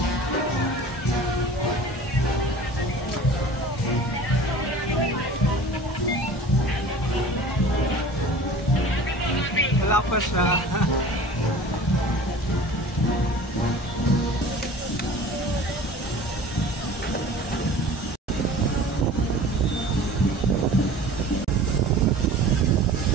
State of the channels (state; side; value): normal; both; correlation 0.42